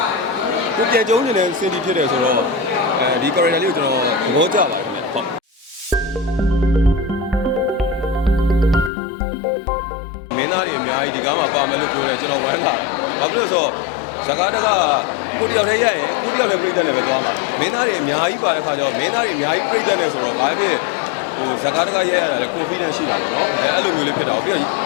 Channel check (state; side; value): drops out; right; at 8.9 s